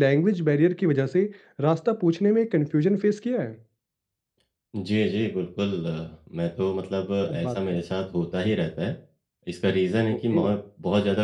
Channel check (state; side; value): identical; both; correlation 1.00